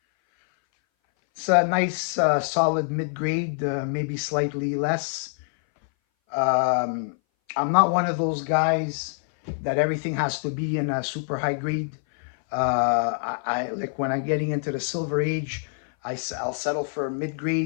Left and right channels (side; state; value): right; silent; 59 dB below the other